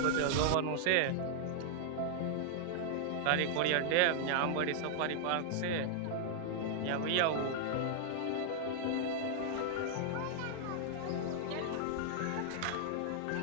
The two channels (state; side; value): different; both; correlation -0.01